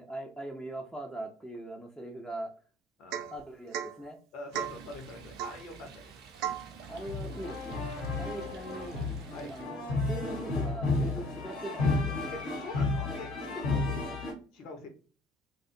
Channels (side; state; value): both; normal; correlation 0.52